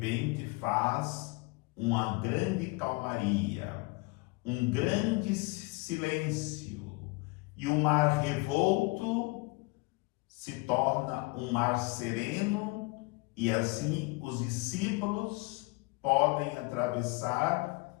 faz uma grande calmaria, um grande silêncio, e o mar revolto se torna um mar sereno, e assim os discípulos podem atravessar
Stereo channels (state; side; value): quieter; right; 25.3 dB